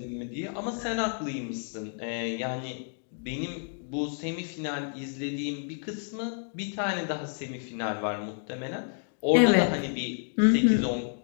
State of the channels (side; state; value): right; silent; 58 dB below the other